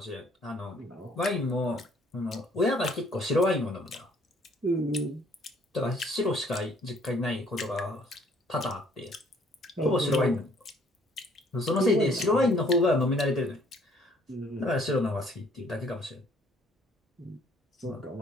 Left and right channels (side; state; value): both; normal; correlation 0.61